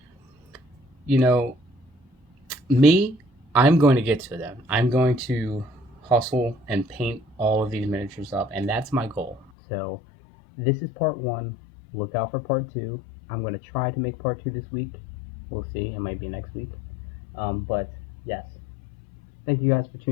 you know, me, I'm going to get to them. I'm going to hustle and paint all of these miniatures up, and that's my goal. So this is part 1. Look out for part 2. I'm going to try to make part 2 this week. We'll see. It might be next week. But yes, thank you guys for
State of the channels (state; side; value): drops out; right; at 9.5 s